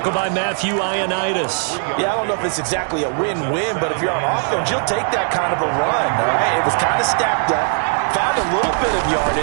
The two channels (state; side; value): silent; left; 58 dB below the other